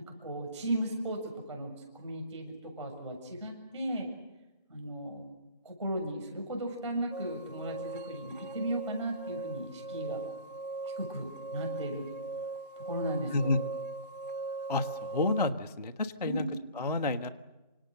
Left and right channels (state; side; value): inverted; both; correlation -0.46